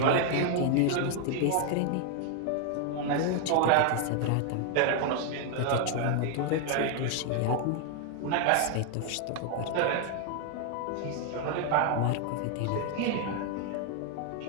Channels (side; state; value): both; different; correlation 0.00